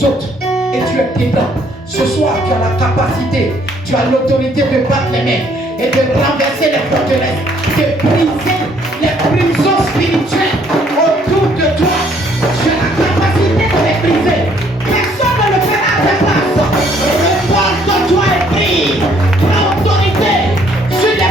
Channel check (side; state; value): both; normal; correlation 0.64